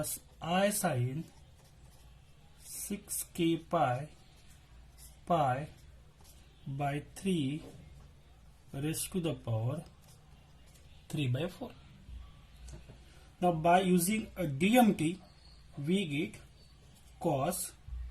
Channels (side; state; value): both; identical; correlation 1.00